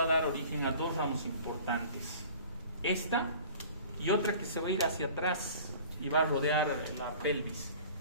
a dar origen a dos ramos importantes. Esta y otra que se va a ir hacia atrás y va a rodear la pelvis,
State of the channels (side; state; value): both; inverted; correlation -0.45